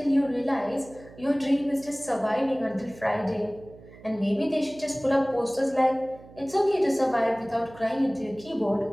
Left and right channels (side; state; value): right; noise; hum, 20 dB below the sound